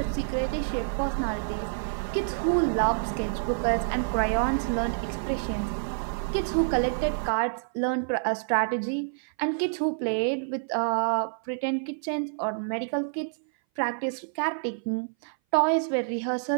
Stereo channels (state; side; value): silent; left; 58 dB below the other